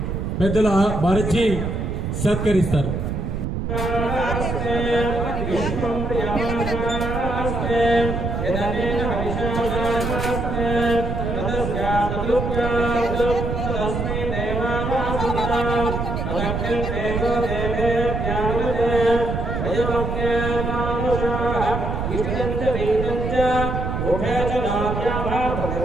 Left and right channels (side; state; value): right; noise; rumble, 3 dB below the sound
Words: పెద్దల భారతి సత్కరిస్తారు.